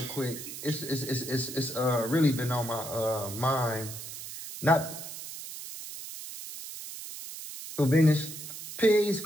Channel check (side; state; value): right; noise; hiss, 10 dB below the sound